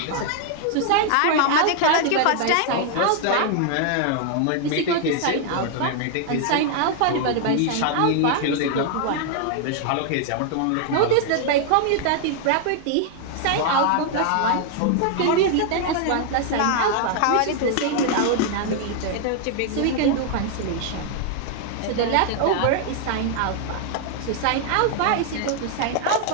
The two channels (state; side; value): different; both; correlation 0.00